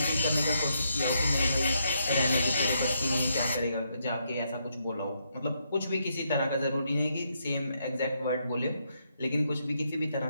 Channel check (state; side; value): inverted; both; correlation -0.78